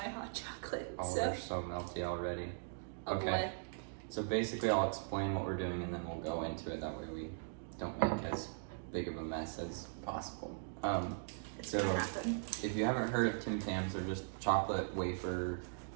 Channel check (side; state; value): left; silent; digital silence